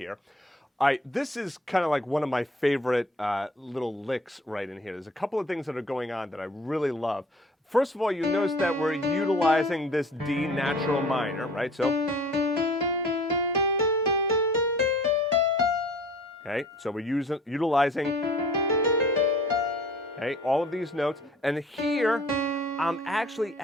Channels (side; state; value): both; normal; correlation 0.49